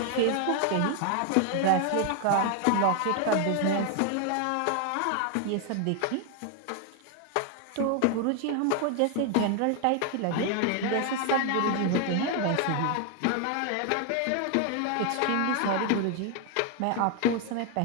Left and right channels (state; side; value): different; both; correlation 0.00